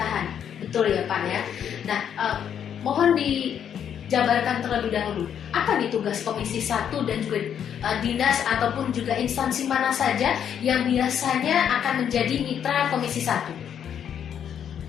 Betul ya Pak ya? Nah, mohon dijabarkan terlebih dahulu. Apa nih tugas Komisi 1 dan juga dinas ataupun juga instansi mana saja yang biasanya akan menjadi mitra Komisi 1?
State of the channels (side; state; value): right; quieter; 8.8 dB